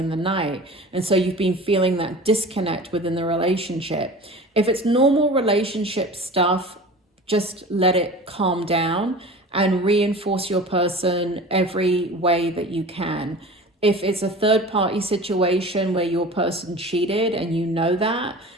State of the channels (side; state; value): both; normal; correlation 0.37